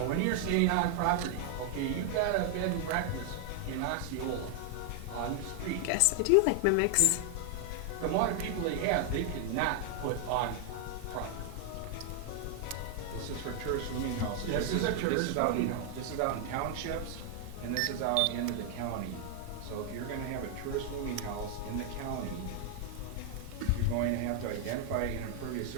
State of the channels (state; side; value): different; both; correlation 0.00